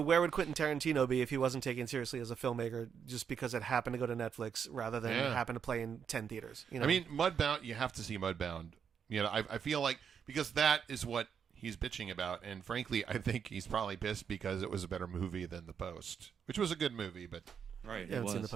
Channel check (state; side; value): quieter; left; 7.3 dB